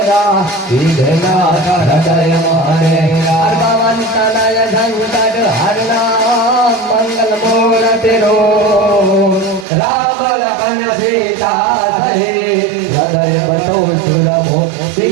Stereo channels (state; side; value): drops out; left; at 9.7 s